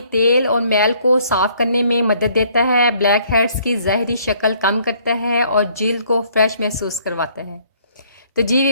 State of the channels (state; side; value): inverted; both; correlation -0.63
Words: تیل اور میل کو صاف کرنے میں مدد دیتا ہے، بلیک ہیڈز کی ظاہری شکل کم کرتا ہے اور جلد کو فریش محسوس کرواتا ہے۔ تو جی